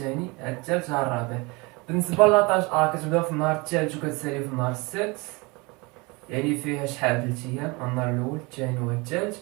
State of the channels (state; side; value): quieter; left; 26.5 dB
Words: ها الثالث، ها الرابع. بالنسبه لاطاش كتبدا في النهار الثالث وكتسالي في النهار السادس، يعني فيها شحال؟ 3 ايام. النهار الاول، الثاني والثالث.